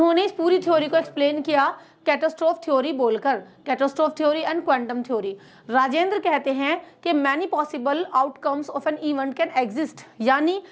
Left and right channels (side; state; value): both; identical; correlation 1.00